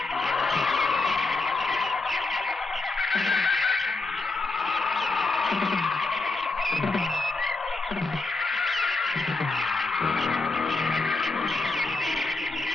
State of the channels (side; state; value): right; quieter; 3.6 dB